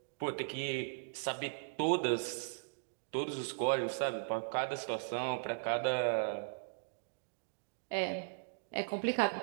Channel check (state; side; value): silent; left; digital silence